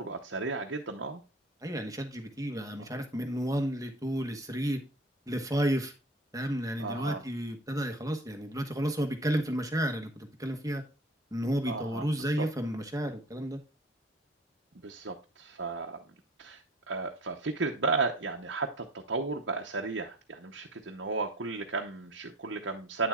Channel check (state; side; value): normal; both; correlation 0.44